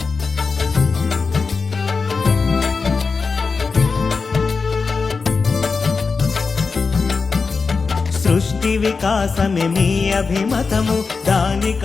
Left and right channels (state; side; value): quieter; right; 4.7 dB